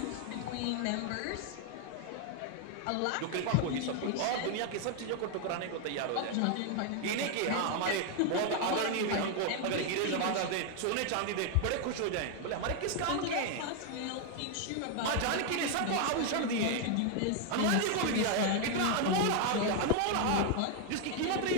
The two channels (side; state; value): both; different; correlation 0.01